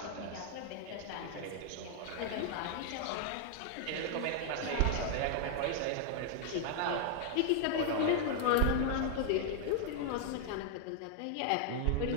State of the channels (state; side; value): different; both; correlation 0.00